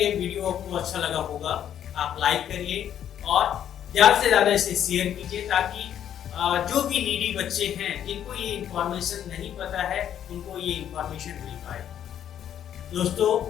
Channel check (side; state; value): right; quieter; 10.0 dB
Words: वीडियो आपको अच्छा लगा होगा आप लाइक करिए और ज़्यादा से ज़्यादा इसे शेयर कीजिए, ताकि जो भी नीडी बच्चे हैं जिनको ये इंफॉर्मेशन नहीं पता है उनको ये इंफॉर्मेशन मिल पाए। दोस्तों,